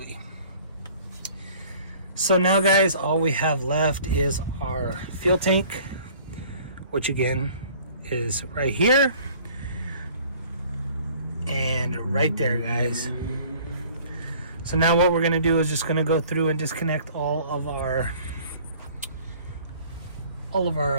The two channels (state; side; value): inverted; both; correlation -0.51